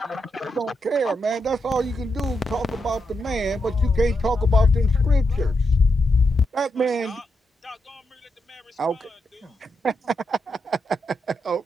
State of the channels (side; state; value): both; normal; correlation 0.84